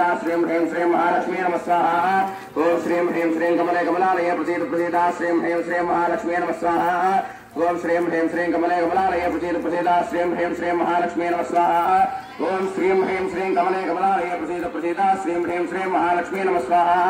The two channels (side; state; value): both; identical; correlation 1.00